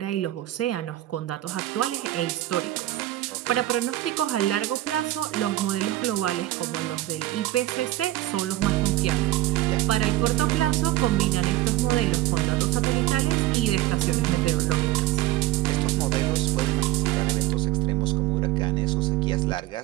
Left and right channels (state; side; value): quieter; left; 15.7 dB